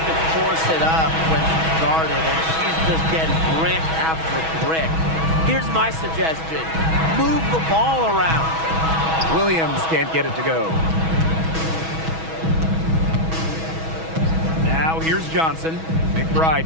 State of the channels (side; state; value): left; late; 6.2 ms